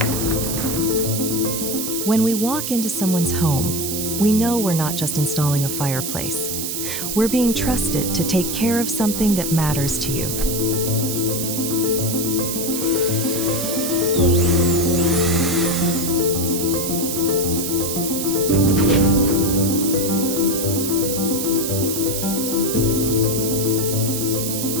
we walk into someone's home, we know we're not just installing a fireplace. We're being trusted to take care of something that matters to you.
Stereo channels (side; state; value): right; noise; hiss, 3 dB below the sound